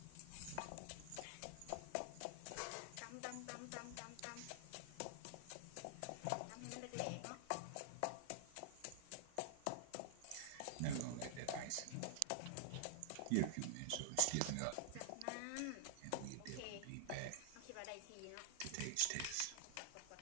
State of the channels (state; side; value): different; both; correlation -0.01